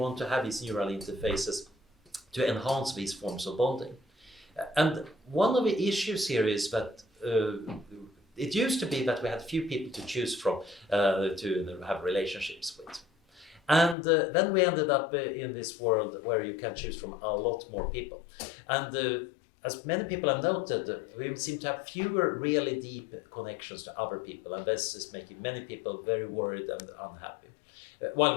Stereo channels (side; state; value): right; drops out; at 14.0 s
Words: to have these neural interfaces to enhance these forms of bonding? And one of the issues here is that it used to be that we had few people to choose from to have relationships with. And then we ended up in this world where you can choose from a lot more people. And as many people have noted, we seem to have fewer really deep connections to other people, and this is making many people very worried and unhappy. While